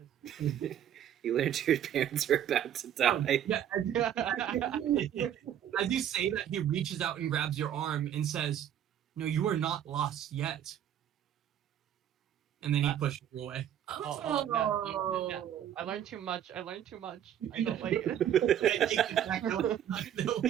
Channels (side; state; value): left; quieter; 10.2 dB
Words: is... You learned your parents were about to die. Yeah, as you say that, he reaches out and grabs your arm and says, "No, you are not lost yet." And then he pushes you away. Oh, no. I learned too much. I learned too much. I don't like it.